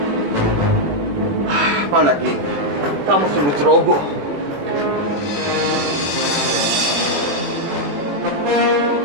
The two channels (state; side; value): late; left; 21 ms